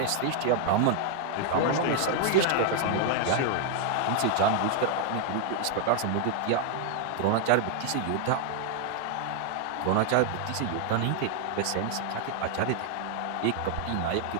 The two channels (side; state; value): both; different; correlation 0.00